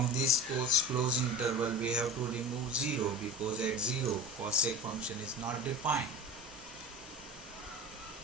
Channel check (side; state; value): both; normal; correlation 0.33